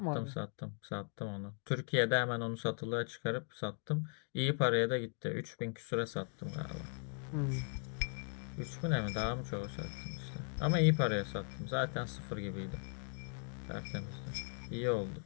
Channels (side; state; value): right; silent; 52 dB below the other